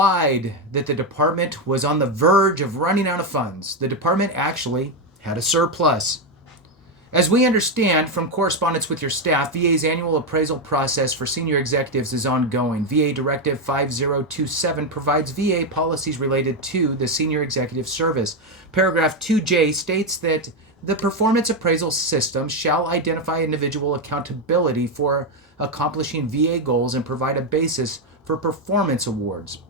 that the department was on the verge of running out of funds, the department actually had a surplus. As we understand from correspondence with your staff, VA's annual appraisal process for senior executives is ongoing. VA Directive 5027 provides VA policies related to the senior executive service. Paragraph 2J states that the performance appraisal system shall identify individual accountability for accomplishing VA goals and provide a basis for performance awards,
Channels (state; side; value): normal; both; correlation 0.07